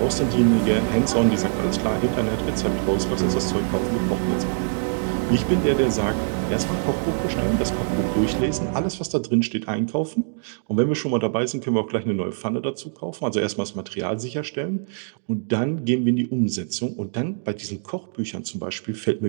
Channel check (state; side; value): silent; left; digital silence